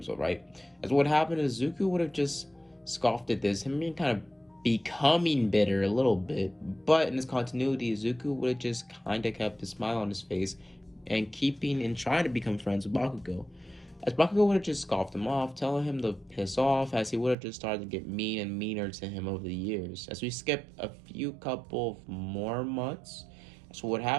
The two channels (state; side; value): drops out; left; at 17.4 s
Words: old, right? As what happened is Izuku would have just scoffed at this, him being kind of becoming bitter a little bit, but in this continuity, Izuku would have just kind of kept a smile on his face and trying to become friends with Bakugo. As Bakugo would have just scoffed him off, telling him to piss off, as he would have just started to get mean and meaner to him over the years. As we skip a few couple of more months, so what